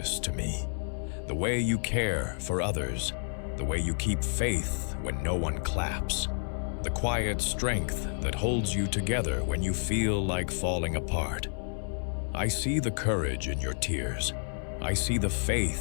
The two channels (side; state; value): right; silent; 58 dB below the other